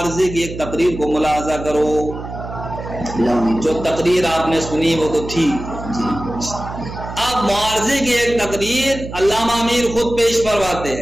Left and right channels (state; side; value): noise; right; hum, 10 dB below the sound